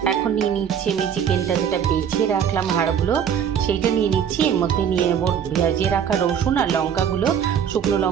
এখন নিয়ে নিচ্ছি আমি চিকেনটা, যেটা বেছে রাখলাম হাড়গুলো, সেইটা নিয়ে নিচ্ছি। এর মধ্যে নিয়ে নেব ভেজে রাখা রসুন আর লঙ্কাগুলো, শুকনো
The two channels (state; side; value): quieter; left; 8.3 dB